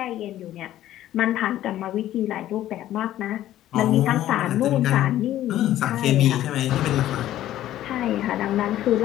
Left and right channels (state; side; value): quieter; right; 13.2 dB